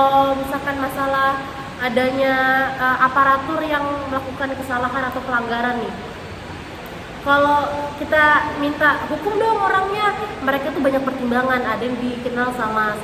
misalkan masalah adanya aparatur yang melakukan kesalahan atau pelanggaran nih, kalau kita minta hukum dong orangnya, mereka tuh banyak pertimbangan. Ada yang dikenal sama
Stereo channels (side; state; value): both; identical; correlation 1.00